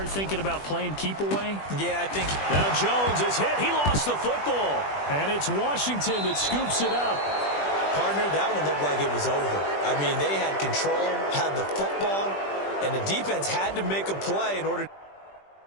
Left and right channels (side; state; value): right; late; 20 ms